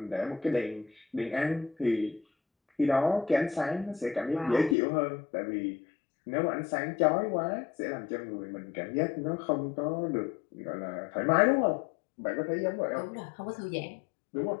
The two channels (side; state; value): right; drops out; at 4.8 s